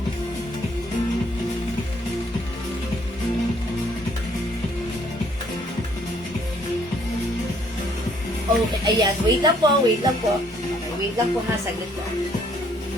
Okay, ayan. Wait lang po, wait lang po. Okay, wait lang po ha, saglit po.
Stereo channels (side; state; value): both; normal; correlation 0.64